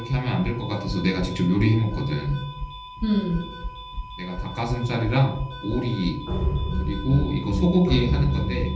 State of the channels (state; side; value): identical; both; correlation 1.00